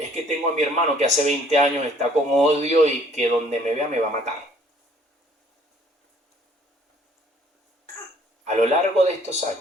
que tengo a mi hermano que hace 20 años está con odio y que donde me vea me va a matar. A lo largo de estos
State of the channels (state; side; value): normal; both; correlation 0.60